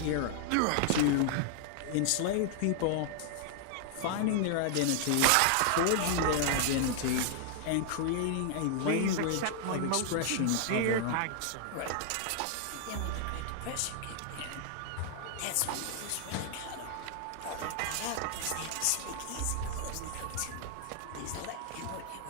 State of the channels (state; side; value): different; both; correlation 0.00